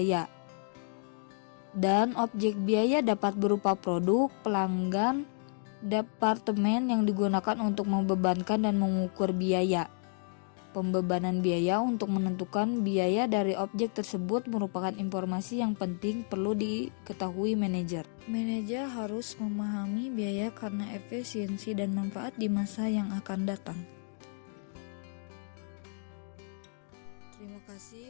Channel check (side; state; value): right; silent; 57 dB below the other